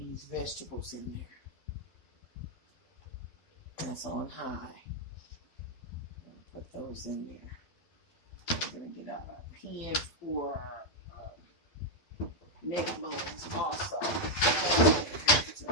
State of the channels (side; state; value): right; late; 12 ms